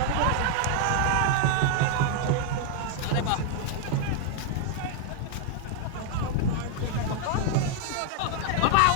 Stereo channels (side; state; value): both; different; correlation 0.00